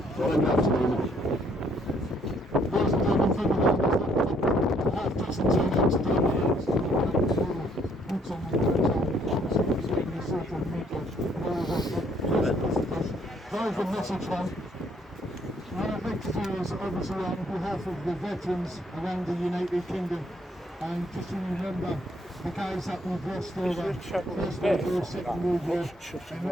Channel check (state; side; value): normal; both; correlation 0.66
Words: Good afternoon. Ladies and gentlemen, from the half dozen teams today, boots on the ground, obviously the social media, very good message one. What I'd like to do is obviously on behalf of the veterans around the United Kingdom, and just to remember the guys that we've lost over First World War, Second World War, and